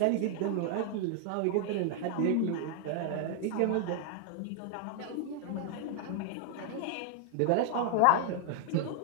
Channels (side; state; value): both; different; correlation 0.00